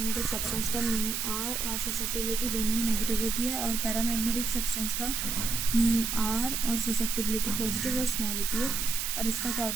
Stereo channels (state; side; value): noise; right; hiss, 1 dB below the sound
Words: सब्सटेंस का म्यू आर और ससेप्टिबिलिटी दोनों ही नेगेटिव होती है, और पैरामैग्नेटिक सब्सटेंस का म्यू आर और ससेप्टिबिलिटी पॉजिटिव और स्मॉल होती है, और इसका क्या